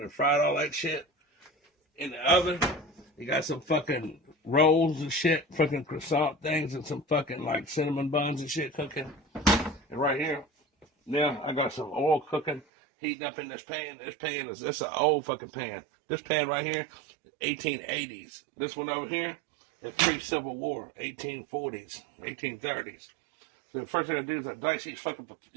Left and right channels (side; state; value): left; drops out; at 12.7 s